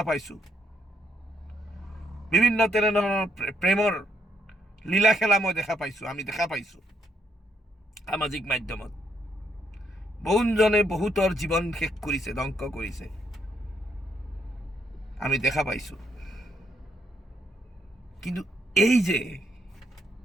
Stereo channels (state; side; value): normal; both; correlation 0.73